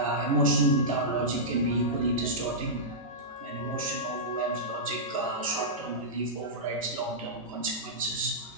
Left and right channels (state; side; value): normal; both; correlation -0.13